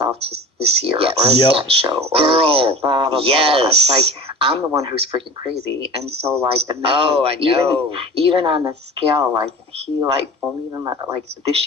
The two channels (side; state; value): both; normal; correlation 0.37